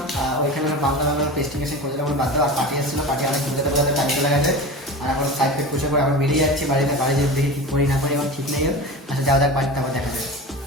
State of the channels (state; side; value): normal; both; correlation 0.30